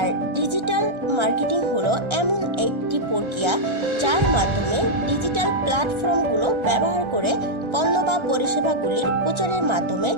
ডিজিটাল মার্কেটিং হলো এমন একটি প্রক্রিয়া যার মাধ্যমে ডিজিটাল প্ল্যাটফর্মগুলো ব্যবহার করে পণ্য বা পরিষেবাগুলির প্রচারের মাধ্যমে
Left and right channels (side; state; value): left; late; 1.3 ms